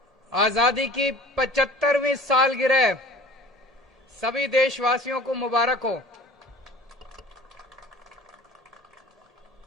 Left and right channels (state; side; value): normal; both; correlation 0.44